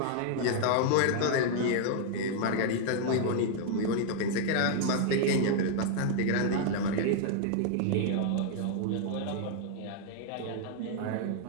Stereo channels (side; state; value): both; different; correlation 0.00